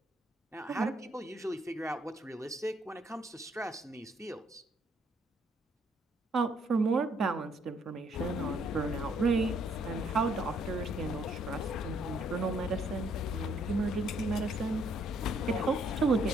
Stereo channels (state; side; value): normal; both; correlation 0.68